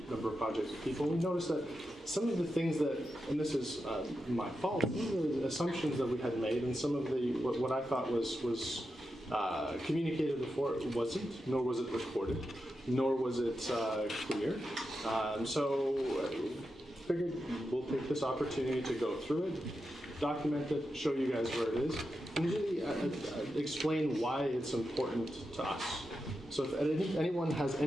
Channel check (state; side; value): normal; both; correlation 0.89